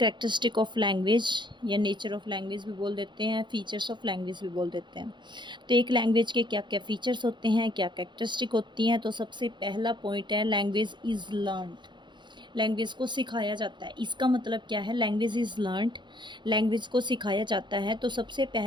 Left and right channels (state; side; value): late; left; 0.22 ms